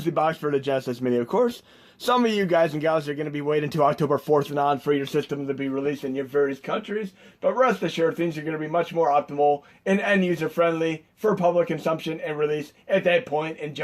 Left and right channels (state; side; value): identical; both; correlation 1.00